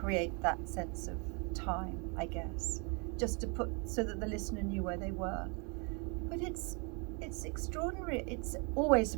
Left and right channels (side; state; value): left; quieter; 34.2 dB